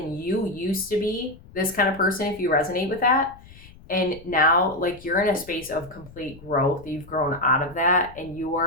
to be this kind of person, if you resonate with that. And now, like, you're in a space of complete growth. You've grown out of that, and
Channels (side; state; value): left; noise; rumble, 20 dB below the sound